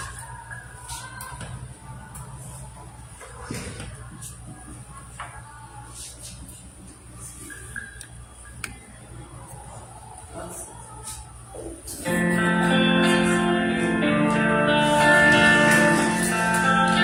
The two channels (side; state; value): both; identical; correlation 1.00